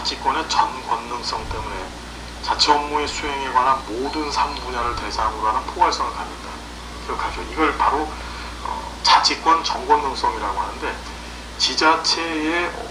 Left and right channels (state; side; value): identical; both; correlation 1.00